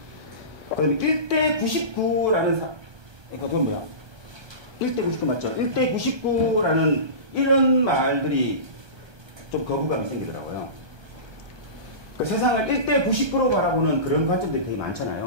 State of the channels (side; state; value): left; late; 1.2 ms